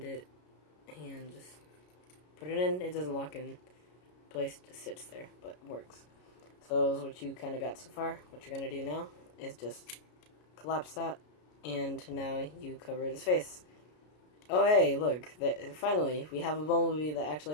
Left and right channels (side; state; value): right; late; 33 ms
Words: it, and just put it in. It doesn't lock in place, it just sits there, but works. So that's what you kind of got so far. What you're gonna do now is just collapse that, and now you cover his face. Oh hey, look, finally, we have a Bumblebee that